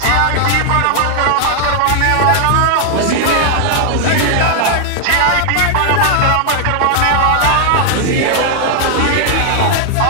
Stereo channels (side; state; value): both; different; correlation 0.00